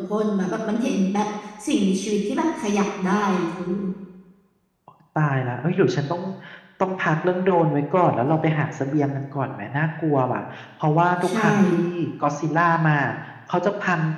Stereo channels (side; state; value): both; identical; correlation 1.00